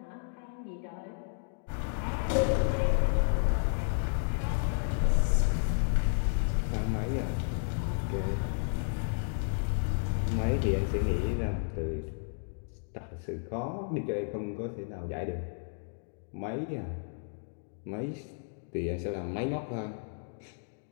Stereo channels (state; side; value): silent; right; digital silence